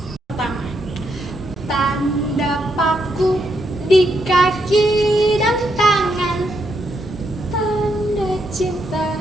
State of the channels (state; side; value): normal; both; correlation 0.79